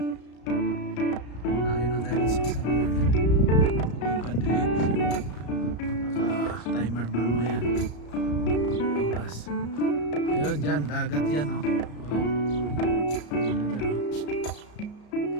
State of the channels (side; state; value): right; late; 34 ms